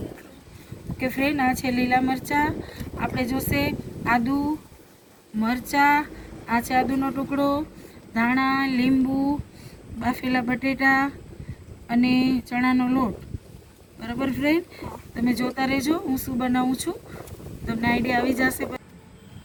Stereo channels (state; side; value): identical; both; correlation 1.00